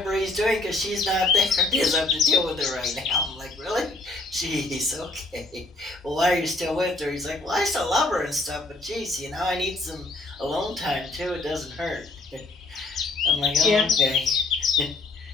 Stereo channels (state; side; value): quieter; right; 3.0 dB